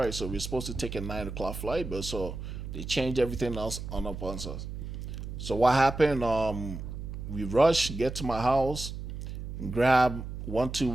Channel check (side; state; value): right; noise; hum, 8 dB below the sound